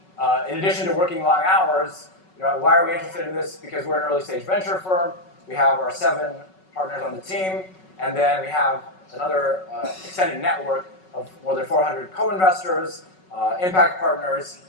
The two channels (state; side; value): late; right; 5.4 ms